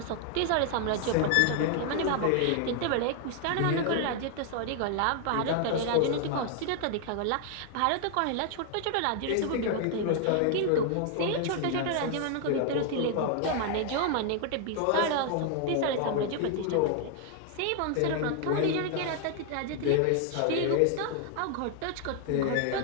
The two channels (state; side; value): different; both; correlation 0.00